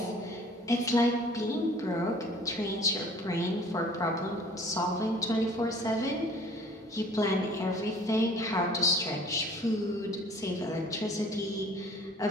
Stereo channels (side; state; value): both; normal; correlation 0.51